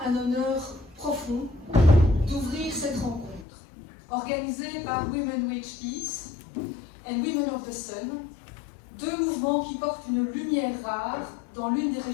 un honneur profond d'ouvrir cette rencontre, organisée par Women Who Peace and Women of the Sun, deux mouvements qui portent une lumière rare dans l'une des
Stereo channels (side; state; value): right; drops out; at 3.5 s